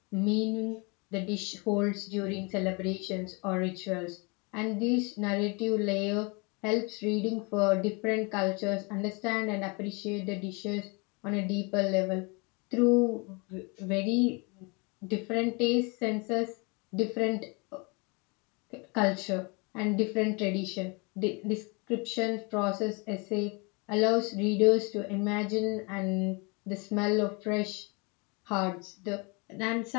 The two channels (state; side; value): quieter; right; 30.2 dB